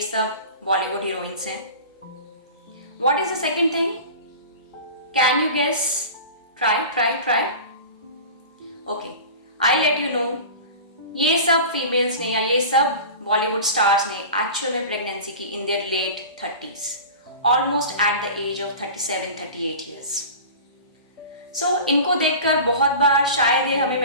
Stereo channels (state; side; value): inverted; both; correlation -0.35